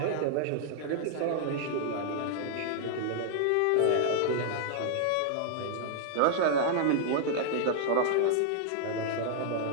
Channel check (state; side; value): different; both; correlation -0.01